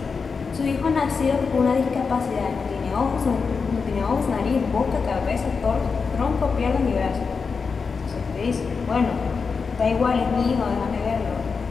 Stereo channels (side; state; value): right; quieter; 5.1 dB